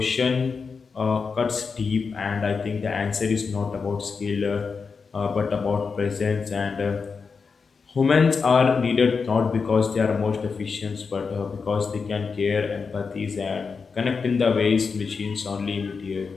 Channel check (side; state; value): right; quieter; 5.2 dB